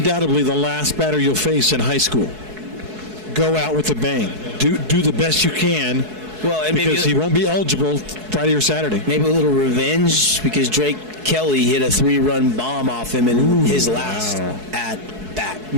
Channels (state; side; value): late; left; 4.7 ms